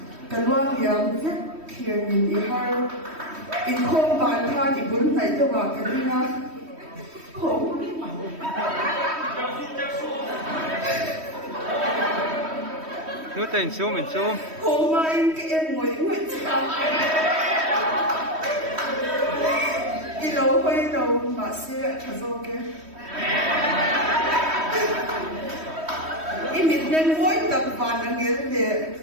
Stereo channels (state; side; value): late; left; 3.1 ms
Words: cái loang liang vết kia nhìn đi hai in không bàn tha thì bốn này cho vào cái đi na không Nếu tình xuống mình xuống không mà in cái em ngồi chào đi lâu quay đầu mà xe thật rồi cái in mình nên mỗi tập bàn là nghĩa để